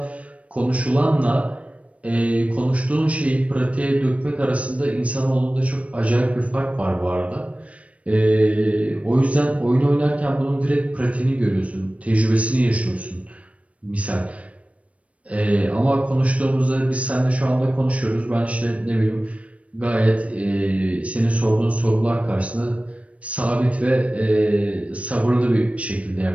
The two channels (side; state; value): left; late; 0.064 ms